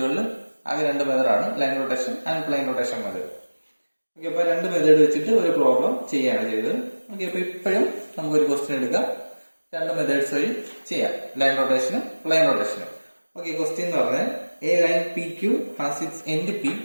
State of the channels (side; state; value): both; inverted; correlation -1.00